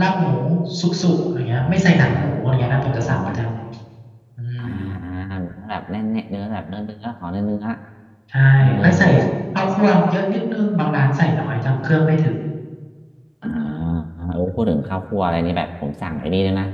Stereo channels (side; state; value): both; identical; correlation 1.00